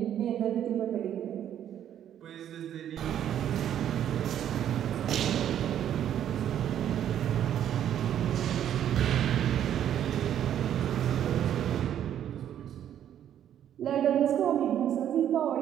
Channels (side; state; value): left; quieter; 10.3 dB